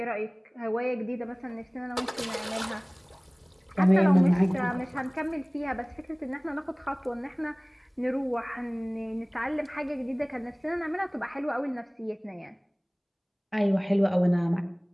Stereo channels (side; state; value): both; identical; correlation 1.00